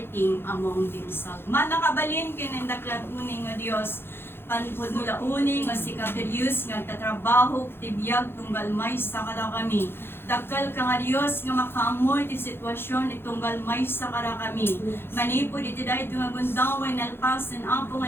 among themselves. Manakabalin kinendaklat uning nga Dios, panpod nula uning nga si Katerius nga tatrabaho tibiyag tunggal may sa kada kami. Dakal ka nga Dios nga makaamoy ti sitwasyon itunggal may sa kada kami. Manipod iti dahil nga gundawan nalpasan apo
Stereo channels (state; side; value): late; right; 0.11 ms